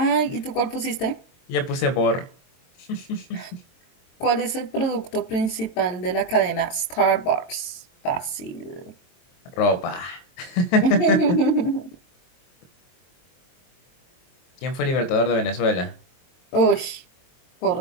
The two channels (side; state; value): right; late; 23 ms